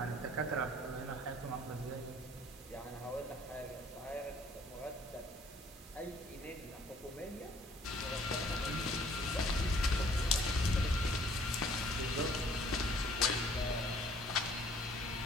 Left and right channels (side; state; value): both; normal; correlation 0.58